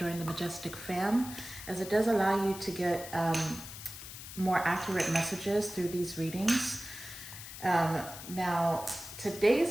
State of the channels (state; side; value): noise; left; hiss, 12 dB below the sound